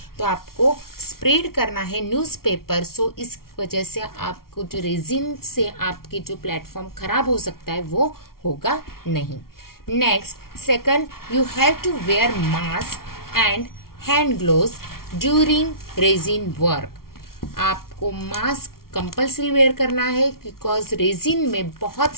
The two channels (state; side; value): late; right; 0.93 ms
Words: तो आपको स्प्रेड करना है न्यूज़पेपर. सो इस वजह से आपको जो रेजिन से आपके जो प्लेटफॉर्म खराब हो सकता है वो होगा नहीं. Next, second, you have to wear mask and hand gloves during resin work. आपको मास्क कंपल्सरी वेयर करना है बिकॉज रेजिन में बहुत